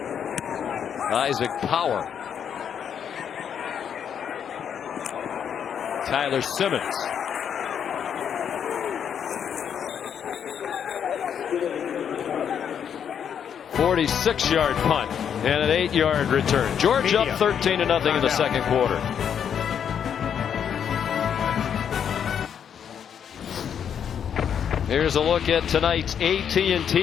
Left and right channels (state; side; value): quieter; right; 8.2 dB